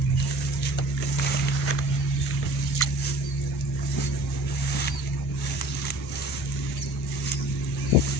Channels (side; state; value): both; normal; correlation 0.47